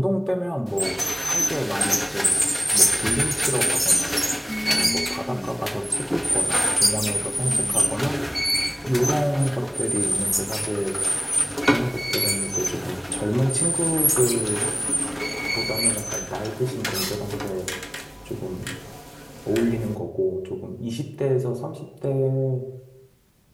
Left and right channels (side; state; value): both; identical; correlation 1.00